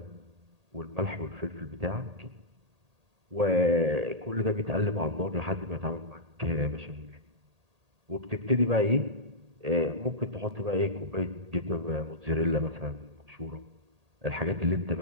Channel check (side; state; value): left; late; 1.8 ms